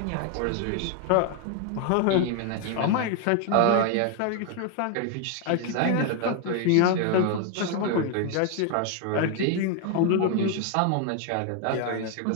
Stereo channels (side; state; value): both; different; correlation 0.01